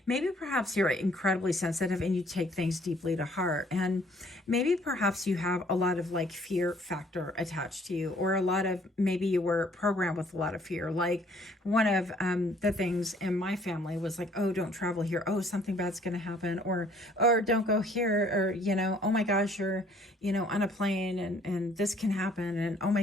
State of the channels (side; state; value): both; normal; correlation 0.60